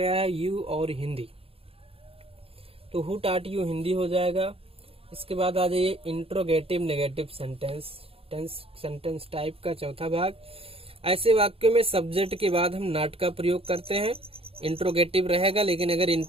है, यू और हिंदी, तो हु टाट यू हिंदी हो जाएगा। इसके बाद आ जाइए इंट्रोगेटिव नेगेटिव सेंटेंस टाइप का चौथा भाग। ऐसे वाक्यों में सब्जेक्ट के बाद हम नॉट का प्रयोग करते हैं, इंट्रोगेटिव रहेगा, लेकिन अगर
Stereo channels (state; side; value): late; left; 0.27 ms